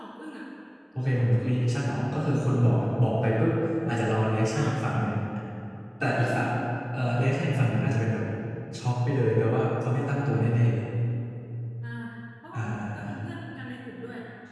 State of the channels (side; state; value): both; identical; correlation 1.00